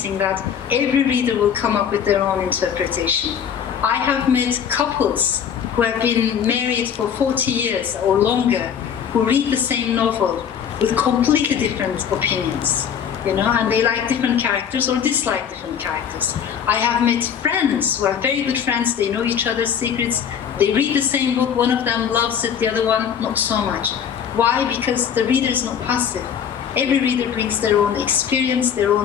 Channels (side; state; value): right; quieter; 8.1 dB